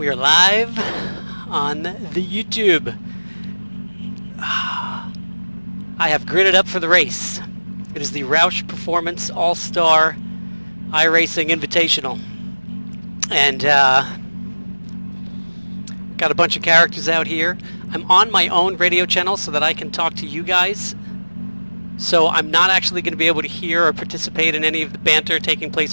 are live on the YouTube. I have gridded up for the race. It is the ROUSH Performance All-Star iRacing Invitational. And got a bunch of characters out here. I'm on my own radio channel so that I can talk to you guys. So I'm not actually going to be able to hear or participate in any of the banter taking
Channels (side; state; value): both; inverted; correlation -1.00